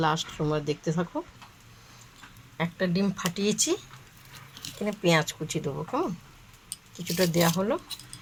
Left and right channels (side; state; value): both; identical; correlation 1.00